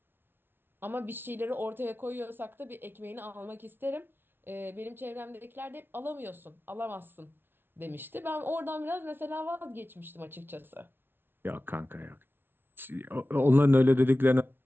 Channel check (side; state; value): left; late; 0.11 ms